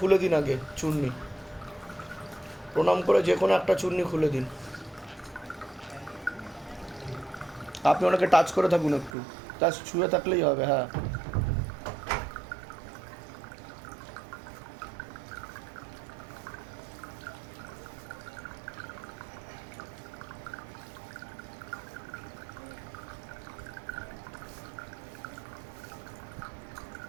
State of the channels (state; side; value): drops out; left; at 9.2 s